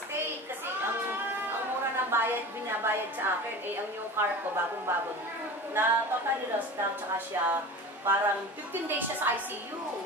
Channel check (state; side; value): normal; both; correlation 0.34